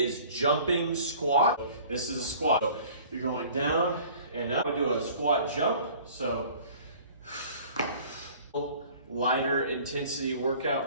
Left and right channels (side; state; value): both; inverted; correlation -0.49